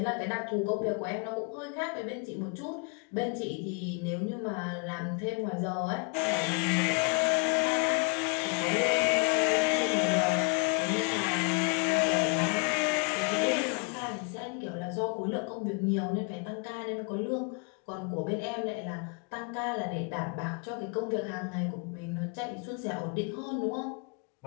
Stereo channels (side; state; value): right; quieter; 35.3 dB